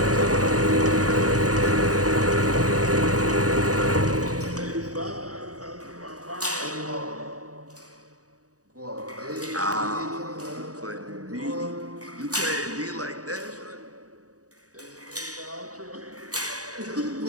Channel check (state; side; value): late; left; 0.66 ms